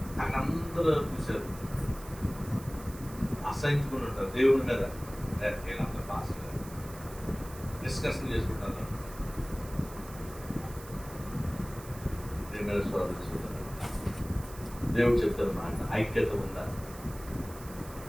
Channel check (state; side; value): noise; right; hiss, 17 dB below the sound